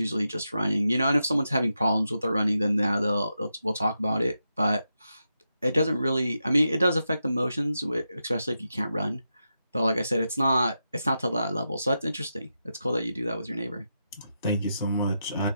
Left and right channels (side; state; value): both; inverted; correlation -0.87